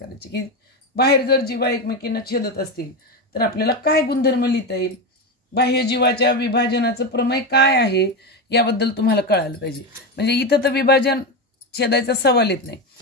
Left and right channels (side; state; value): both; normal; correlation 0.15